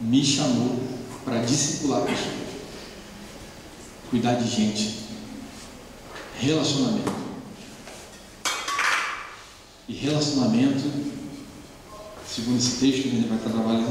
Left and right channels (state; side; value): identical; both; correlation 1.00